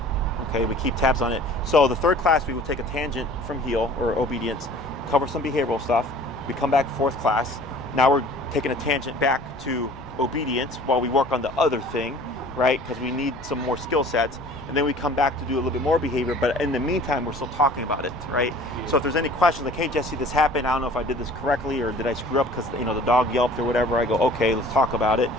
Okay, we keep tabs on it. So the third class, we will take a tangent from heal or obedience, cover some behavioral stuff. We come back fourth class. Now we're taking a tangent back to obedience while we work on the other thing, right? Because we need some more skill sets. And then we come back to do a little bit more behavior, but in the meantime, we're still talking about it, right? Yeah. So if there's any questions like, hey, Jesse, this happened, I don't know if I did this correctly or did I screw up because, the dog yelped or whatever, I go, okay, let's talk about it.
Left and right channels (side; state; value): left; noise; rumble, 19 dB below the sound